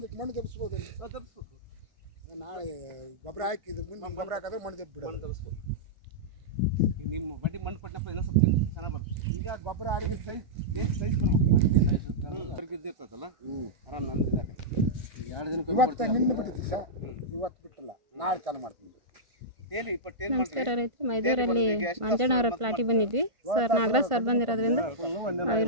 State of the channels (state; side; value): late; left; 1.5 ms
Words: ಮಣ್ಣು ದಬ್ಸ್ಬೋದಲ್ಲಿ ದಬ್ಸ್ಬೇಕು. ನಾಳೆ ಗೊಬ್ಬರ ಹಾಕಿದ್ದು ಮುಂದೆ ಗೊಬ್ಬರ ಹಾಕಿದ್ರೆ ಮಣ್ಣು ದಬ್ಬಿ ಬಿಡೋದು. ಮಣ್ಣು ದಬ್ಸ್ಬೇಕು. ಈಗ ನಿಮ್ಮ ಬಡ್ಡಿ ಮಣ್ಣು ಕೊಟ್ಟಪ್ಪ ಇನ್ನೂ ಸ್ವಲ್ಪ ಚೆನ್ನಾಗಿ ಬರುತ್ತೆ. ಈಗ ಗೊಬ್ಬರ ಆಡಿಗೆ ಸೈಜ್ ಬರ್ಬೇಕು. ಇರ್ತೈತಲ್ಲ ಆರಾಮ್ ನಂದಿದೆ. ಎರಡು ದಿನ ಇವತ್ತು ನಿನ್ನೆ ಬಿಟ್ಟಿದ್ದೆ ಸರ್, ಇವತ್ತು ಬಿಟ್ಟಿಲ್ಲ, ನಾಳೆ ಚಾಲು ಮಾಡ್ತೀನಿ. ನಮಸ್ಕಾರ ರೈತರು, ಮೈದೂರಲ್ಲಿ ಮಂಜಣ್ಣವರ ಪ್ಲಾಟಿಗೆ ಬಂದಿದ್ವಿ ಸರ್. ನಾಗರಾಜ್ ಸರ್ ಬಂದಿರೋದ್ರಿಂದ